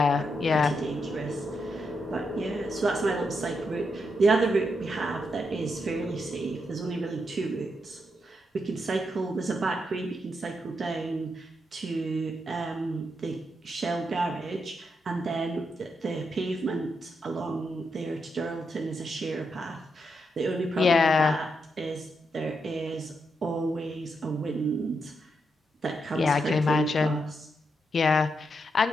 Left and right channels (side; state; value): both; normal; correlation 0.82